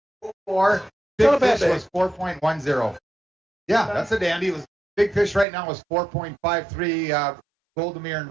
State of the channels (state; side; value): drops out; left; at 5.5 s